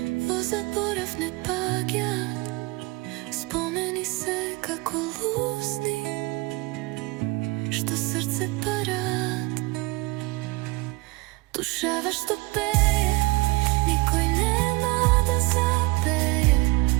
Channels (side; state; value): left; quieter; 24.2 dB